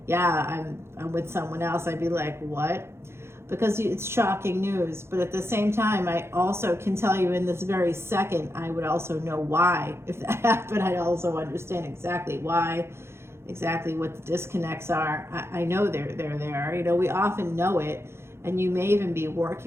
yeah, I'm with someone else, I'd be like, what? Because it's shocking news. But at the same time, I also can tell you in this very second, I would also know why. If that happened, I'd also understand exactly why, exactly what the disconnects are. I know they're there. You know, we often know it, and you may even be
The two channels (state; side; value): late; left; 0.12 ms